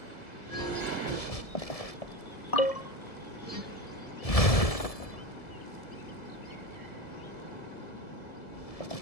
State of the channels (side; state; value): right; late; 1.7 ms